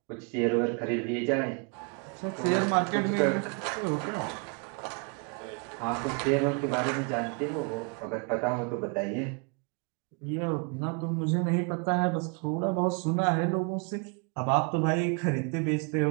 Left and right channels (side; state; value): left; quieter; 35.6 dB